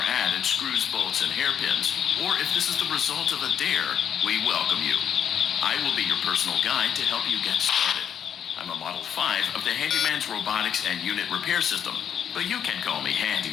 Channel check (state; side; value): quieter; right; 8.6 dB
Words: ad in screws, bolts, and hairpins, or if this is the result of a dare, we welcome you. I will be your personal guide to help you get started. I'm a Model 5 of the Handyman's Robotics and Unit Repair System, but you can call me Hand